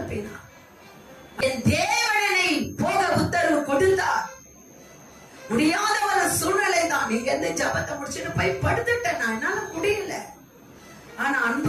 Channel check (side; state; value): both; identical; correlation 1.00